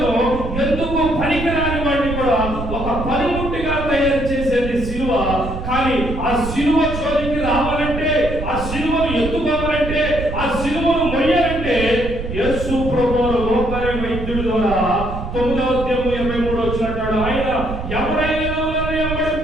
ఎందుకు పనికిరాని వాడిని కూడా ఒక పనిముట్టిగా తయారు చేసేది సిలువ. కానీ ఆ సిలువ జోలికి రావాలంటే, ఆ సిలువను ఎత్తుకోవాలంటే, ఆ సిలువను మొయ్యాలంటే యేసు ప్రభువు లోకారి వైద్యుడి ద్వారా 9వ అధ్యాయం 23 వచ్చినట్టు ఆయన ఎవరైనా నన్ను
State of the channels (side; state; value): right; noise; rumble, 6 dB below the sound